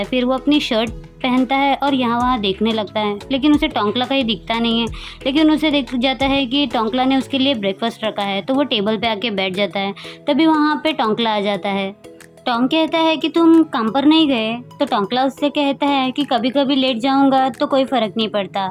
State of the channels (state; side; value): identical; both; correlation 1.00